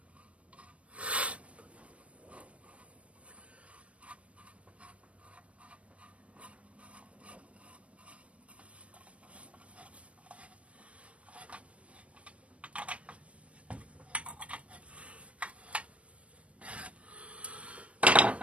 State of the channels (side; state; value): left; late; 0.063 ms